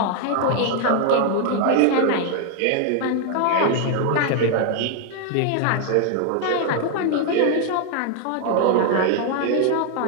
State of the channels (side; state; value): both; different; correlation 0.00